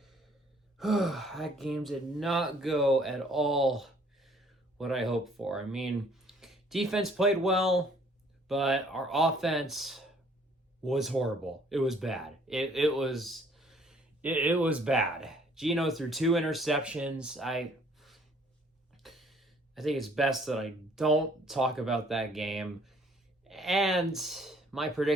That game did not go at all what I hoped for. I mean, defense played well, but our offense was horrible. It was bad. It was bad. Geno threw 2 interceptions. I think it's best that I don't talk about that game. And my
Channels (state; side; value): normal; both; correlation 0.60